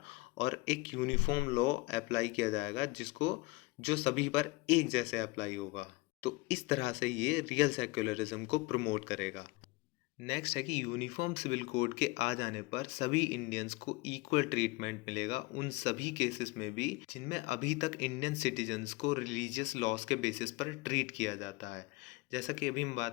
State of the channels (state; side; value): quieter; right; 23.0 dB